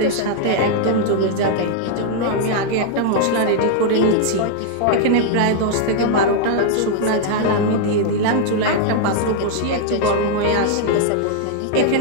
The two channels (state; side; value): different; both; correlation -0.01